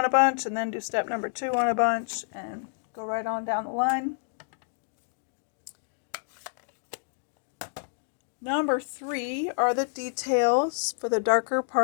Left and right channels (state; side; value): silent; right; digital silence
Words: a bunch, and then do step number 2 on a bunch, and go right on down the line. Number 3 are the details for the darker